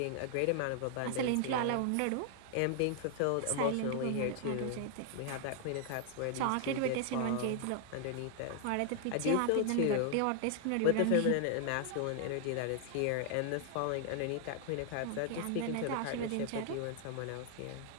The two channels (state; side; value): different; both; correlation 0.00